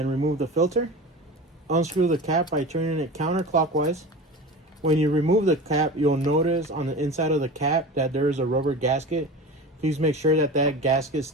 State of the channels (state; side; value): normal; both; correlation 0.32